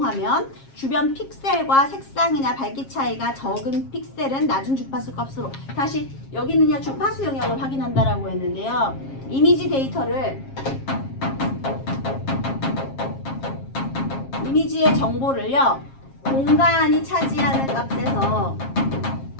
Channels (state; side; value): late; right; 7.4 ms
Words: 주변 픽셀과 색상이나 밝기 차이가 적은 픽셀은 낮은 주파수 값으로, 다시 여기는요 주파수 영역을 확인한다라고 했는데요. 이미지 데이터를 이미지의 정보를요 공간이 차지하는 값에서